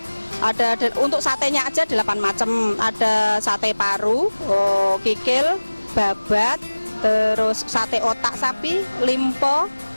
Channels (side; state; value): both; inverted; correlation -1.00